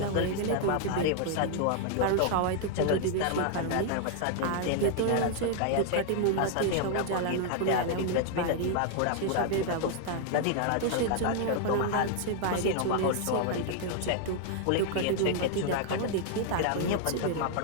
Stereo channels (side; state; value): both; different; correlation 0.00